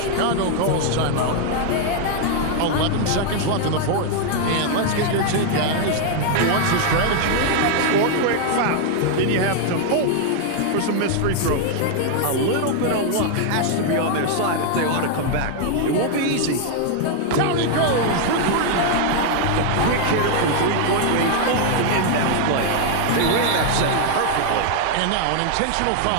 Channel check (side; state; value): both; different; correlation 0.00